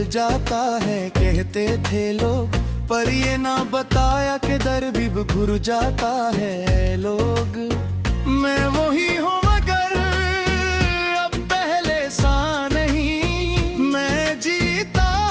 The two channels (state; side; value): identical; both; correlation 1.00